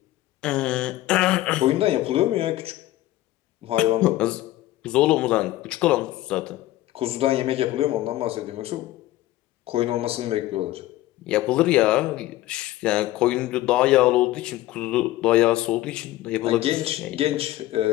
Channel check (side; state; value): right; quieter; 15.9 dB